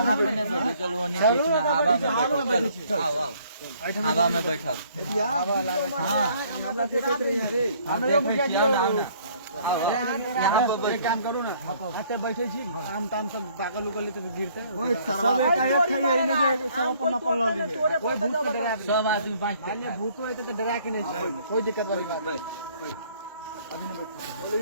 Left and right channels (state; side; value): inverted; both; correlation -0.61